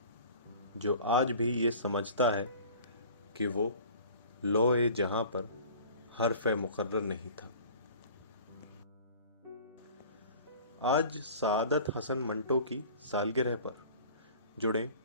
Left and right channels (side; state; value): both; inverted; correlation -0.44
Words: जो आज भी ये समझता है कि वो लौह जहां पर हर्फ मुकर्रर नहीं था। आज सआदत हसन मंटो की सालगिरह पर जुड़े